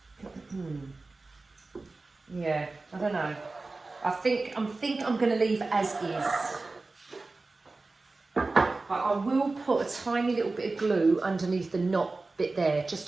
Yeah, I don't know. I think I'm going to leave as is. But I will put a tiny little bit of glue underneath the knot bit there, just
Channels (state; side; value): quieter; left; 3.5 dB